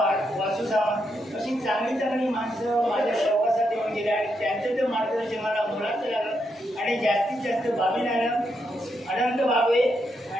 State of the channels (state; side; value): normal; both; correlation 0.81